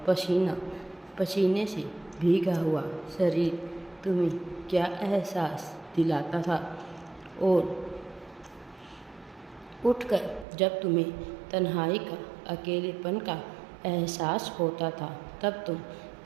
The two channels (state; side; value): drops out; left; at 10.5 s